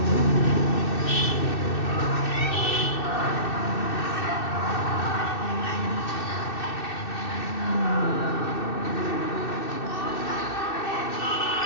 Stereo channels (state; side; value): late; right; 2.6 ms